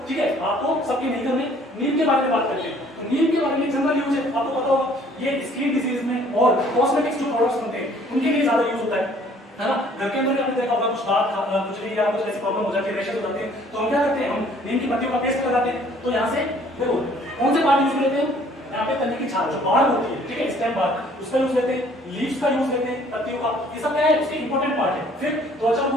ठीक है। आपको सबके नहीं करने। नीम के बारे में बात करते हैं। तो नीम के बारे में जनरल यूज है, आपको पता होगा, ये स्किन डिजीज में और कॉस्मेटिक्स जो प्रोडक्ट्स बनते हैं उनके लिए ज्यादा यूज होता है ना। घर के अंदर आपने देखा होगा कुछ दांत कुछ भी या कुछ ऐसी प्रॉब्लम हो जाती है, रैशेस हो जाते हैं, तो हम क्या करते हैं, हम नीम की पत्तियों का पेस्ट लगाते हैं। तो यहाँ से देखो कौन से पार्ट यूज लेते हैं, यहाँ पे तने की छाल जो बाढ़ होती है, ठीक है, स्टेम बाढ़, उसका यूज लेते हैं, लीव्स का यूज लेते हैं, पत्तियों का, ये सब क्या है उसके इंपॉर्टेंट पार्ट है। फिर त्वचा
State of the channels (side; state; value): both; normal; correlation 0.57